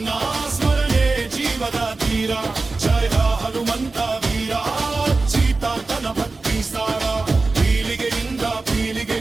ಸ್ಮರಣೆ ಜೀವದ ತೀರ. ಜಯ ಹನುಮಂತ ವೀರ, ಸೀತಾತನ ಭಕ್ತಿ ಸಾರ, ಪೀಳಿಗೆಯಿಂದ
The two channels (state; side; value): quieter; left; 3.6 dB